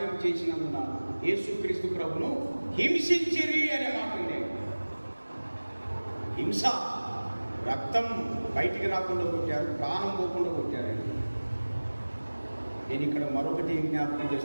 చేసినందున యేసుక్రీస్తు ప్రభును హింసించిరి అనే మాట ఉంది. హింస, రక్తం బయటికి రాకుండా కొట్టారు, ప్రాణం పోకుండా కొట్టారండి. నేను ఇక్కడ మరొకటి జ్ఞాపకం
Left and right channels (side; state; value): both; inverted; correlation -1.00